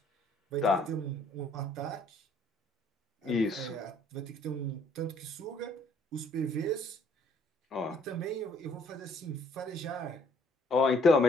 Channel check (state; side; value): normal; both; correlation 0.62